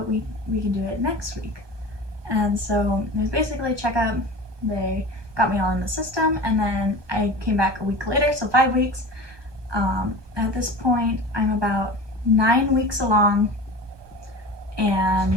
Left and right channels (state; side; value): late; left; 1.2 ms